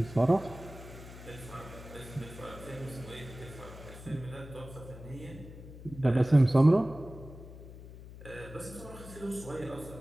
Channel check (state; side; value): noise; left; hum, 15 dB below the sound